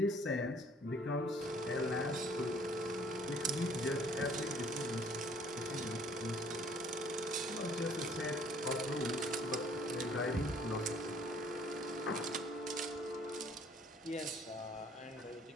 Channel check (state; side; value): normal; both; correlation 0.58